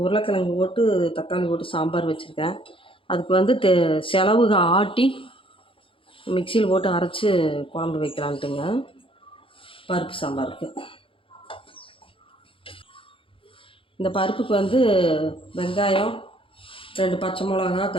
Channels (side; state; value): right; late; 0.26 ms